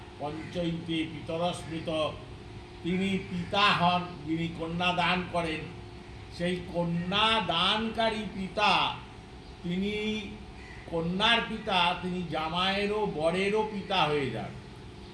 পঞ্চৈতে পিতরস্মৃত, তিনি পিতা হন যিনি কন্যা দান করেন। সেই কন্যা দানকারী পিতা, তিনি কন্যার পিতা, তিনি জামাইয়েরও বরেরও পিতা হয়ে যান।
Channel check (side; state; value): both; identical; correlation 1.00